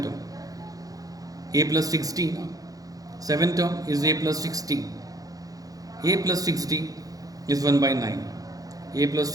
term? A plus 16. Seventh term is A plus 16. A plus 60 is 1 by 9. A plus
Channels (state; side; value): late; left; 0.17 ms